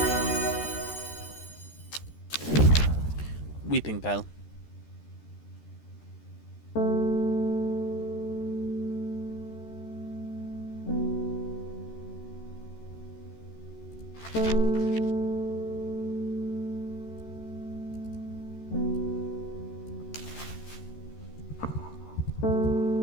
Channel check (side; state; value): right; late; 13 ms